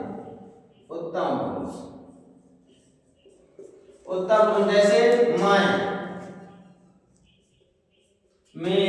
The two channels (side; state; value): both; identical; correlation 1.00